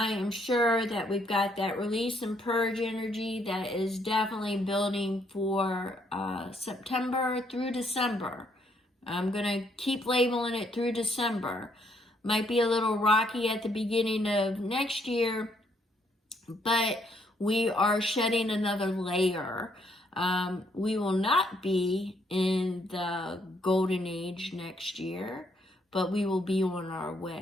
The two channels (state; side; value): normal; both; correlation 0.70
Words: am sure that we've got that release and purge energy that is definitely building for September through December. I'm going to keep labeling it through December. Might be a little rocky at the beginning of next year, but we are shedding another layer. We will not be in the golden age next year, but we will be on our